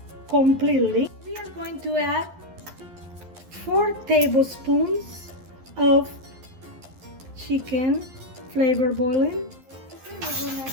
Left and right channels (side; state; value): left; late; 11 ms